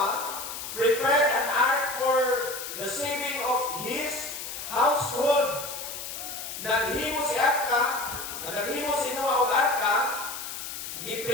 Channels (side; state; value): left; noise; hiss, 8 dB below the sound